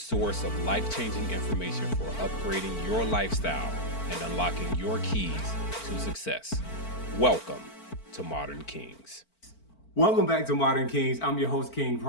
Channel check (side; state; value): right; late; 4.5 ms